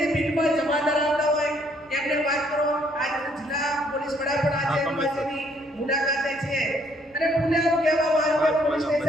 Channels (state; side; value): normal; both; correlation 0.66